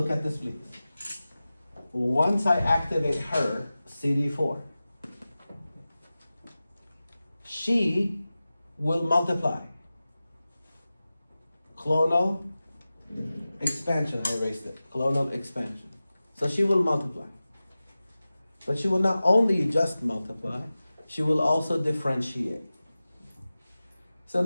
at this, please. Once I activate her, CD4, she will multiply clonal expansion. I erased it. Clonal expansion. So she will multiply. But she will not only just multiply, she will also differentiate. So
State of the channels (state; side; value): inverted; both; correlation -0.96